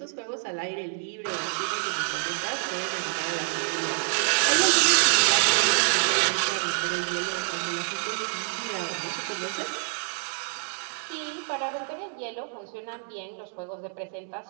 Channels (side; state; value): left; silent; digital silence